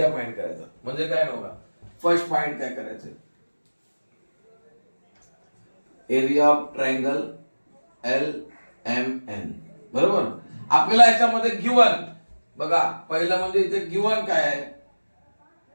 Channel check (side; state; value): both; inverted; correlation -1.00